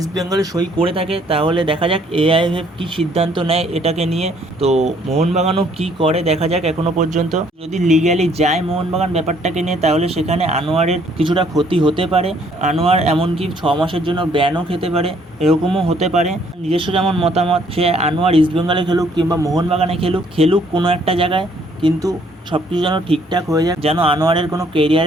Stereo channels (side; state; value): both; normal; correlation 0.64